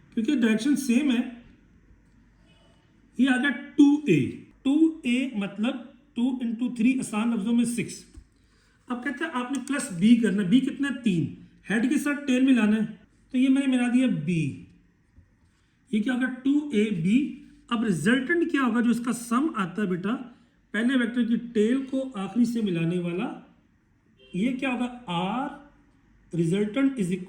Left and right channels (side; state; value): both; identical; correlation 1.00